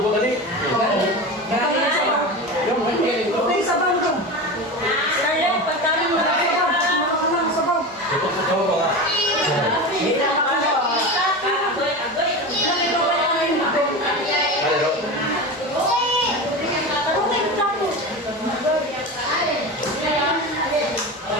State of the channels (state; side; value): normal; both; correlation 0.25